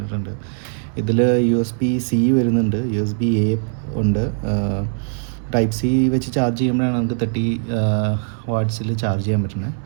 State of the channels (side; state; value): left; silent; 65 dB below the other